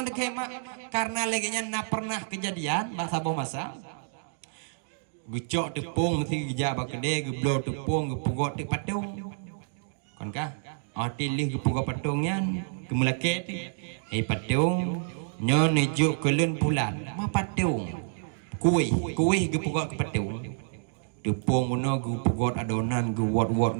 dekem karena legenyan na pernah kejadian masa masa. Gecok tepung mesti geja bakede geblo tepung gepugot te patung. Kon ka? Atilih gepugot patungnya kemelake patung nyo nejuk kelen bulan. Ma patung. Kuih gepugot ke patung. Tepung mono gepugot adonan gewot-wot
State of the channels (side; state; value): left; silent; digital silence